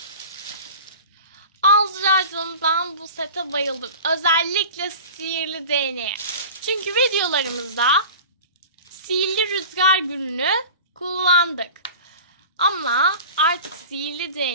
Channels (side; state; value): both; inverted; correlation -0.38